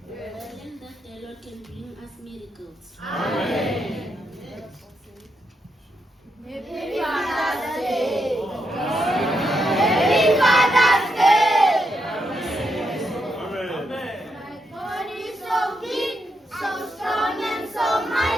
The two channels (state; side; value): normal; both; correlation 0.81